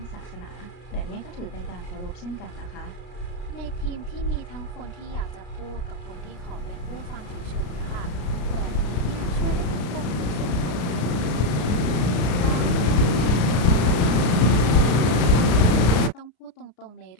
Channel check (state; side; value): late; right; 34 ms